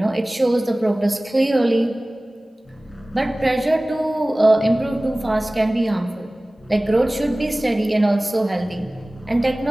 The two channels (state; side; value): normal; both; correlation 0.98